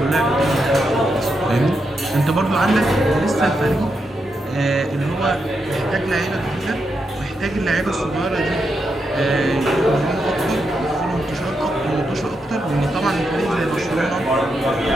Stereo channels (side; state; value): both; normal; correlation 0.84